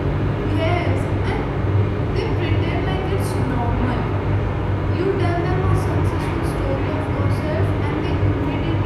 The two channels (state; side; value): identical; both; correlation 1.00